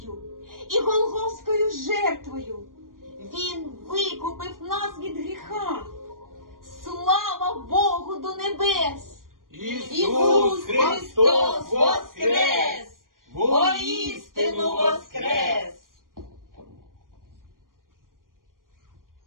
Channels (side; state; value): left; late; 0.91 ms